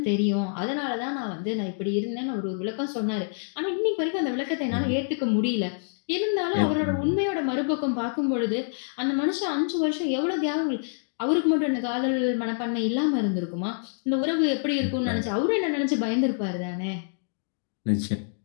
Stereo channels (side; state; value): right; silent; digital silence